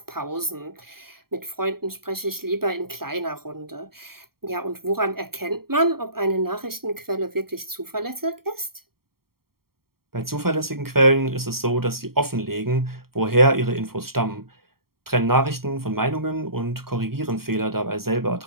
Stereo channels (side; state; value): left; late; 0.93 ms